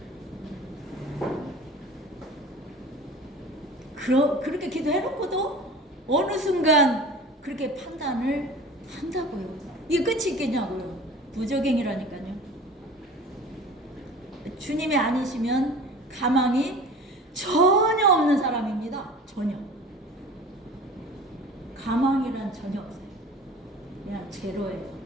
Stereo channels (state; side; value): normal; both; correlation 0.41